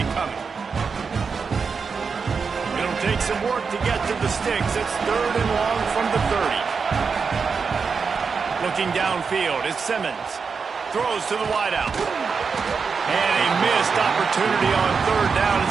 coming. It'll take some work to get to the sticks. It's 3rd and long from the 30. Looking downfield is Simmons. Throws to the wideout. And a missed opportunity on 3rd down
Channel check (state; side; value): quieter; left; 5.4 dB